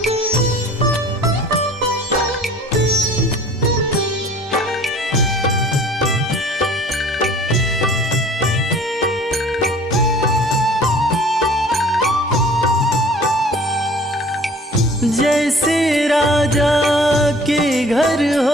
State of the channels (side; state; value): both; normal; correlation 0.49